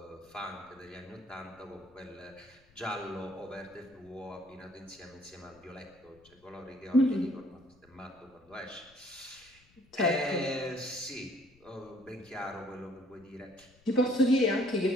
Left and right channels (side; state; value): left; noise; rumble, 29 dB below the sound